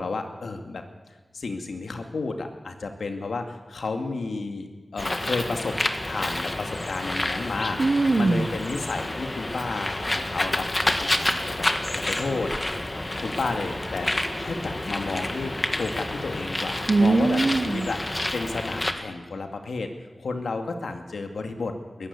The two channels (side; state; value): both; normal; correlation 0.94